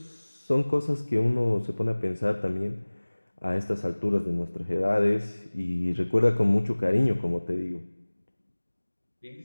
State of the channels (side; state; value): both; inverted; correlation -1.00